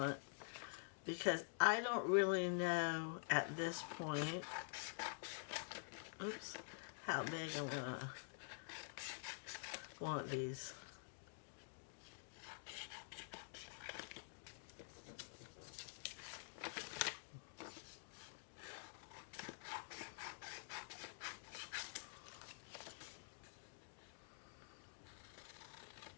because I don't really know at this point, how big I'm gonna want these.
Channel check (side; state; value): right; silent; digital silence